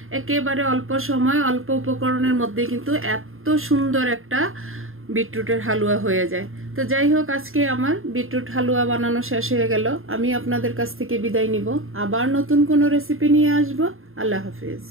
একেবারে অল্প সময় অল্প উপকরণের মধ্যে কিন্তু এত সুন্দর একটা বিটরুটের হালুয়া হয়ে যায়। তো যাই হোক, আজকে আমার বিটরুট হালুয়া বানানো শেষ হয়ে গেল। আমি আপনাদের কাছ থেকে বিদায় নিব, আবার নতুন কোনো রেসিপি নিয়ে আসবো। আল্লাহ হাফেজ।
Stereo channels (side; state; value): left; late; 0.60 ms